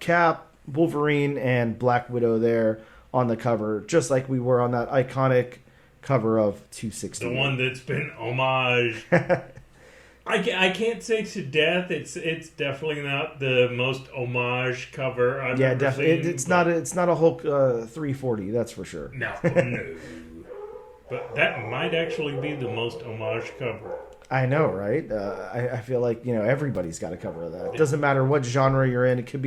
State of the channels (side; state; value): both; identical; correlation 1.00